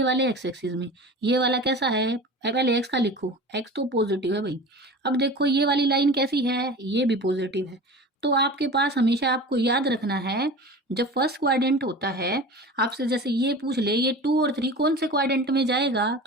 वाले एक्स एक्सिस में। ये वाला कैसा है, पहले एक्स का लिखो, एक्स तो पॉजिटिव है भाई। अब देखो ये वाली लाइन कैसी है, ये भी पॉजिटिव है। तो आपके पास हमेशा आपको याद रखना है, जब फर्स्ट क्वाड्रेंट होता है, आपसे जैसे ये पूछ ले ये 2 और 3 कौन से क्वाड्रेंट में जाएगा,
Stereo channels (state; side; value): normal; both; correlation 0.35